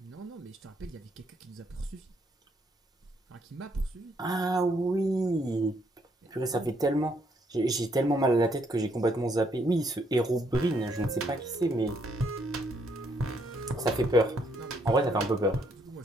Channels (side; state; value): both; normal; correlation 0.72